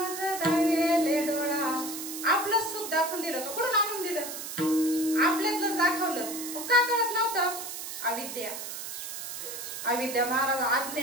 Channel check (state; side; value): noise; right; hiss, 7 dB below the sound